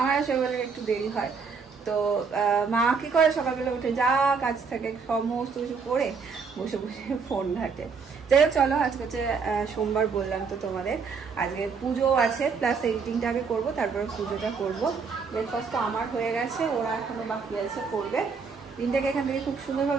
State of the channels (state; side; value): quieter; left; 5.4 dB